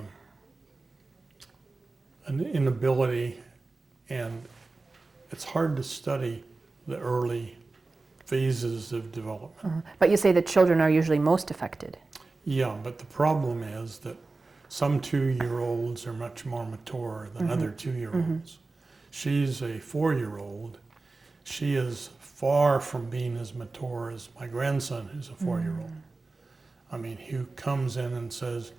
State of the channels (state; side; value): quieter; left; 3.6 dB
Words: an inability, and it's hard to study the early phases of development. But you say that children are usually most affected. Yeah, but the problem is that some 2-year-olds are much more mature than other 2-year-olds. She's a 4-year-old. She is far from being as mature as my grandson, who's a 4-year-old. I mean, who comes in and says,